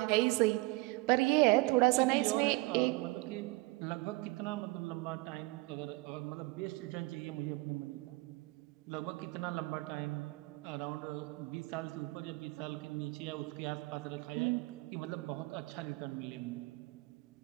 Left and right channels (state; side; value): quieter; left; 22.9 dB